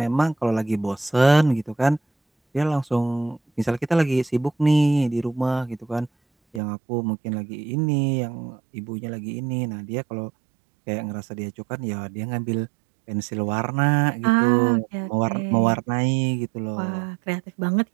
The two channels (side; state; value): left; drops out; at 6.6 s